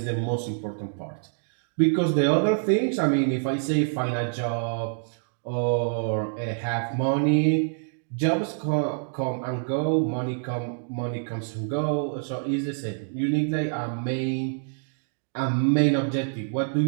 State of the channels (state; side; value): silent; left; digital silence